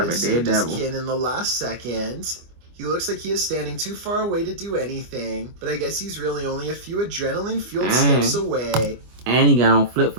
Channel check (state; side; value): late; left; 25 ms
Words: saved his kid in the last second. He looks like he is standing too far away to do anything, but I guess he's really only a few adrenaline-fueled steps away. And he got on